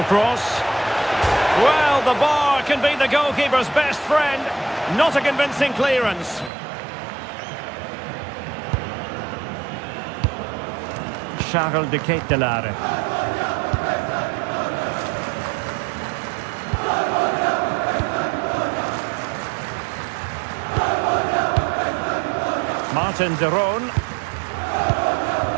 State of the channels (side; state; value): left; drops out; at 6.5 s